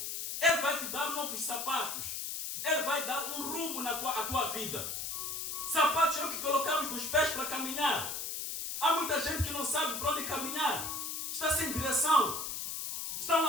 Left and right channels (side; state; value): left; noise; hiss, 4 dB below the sound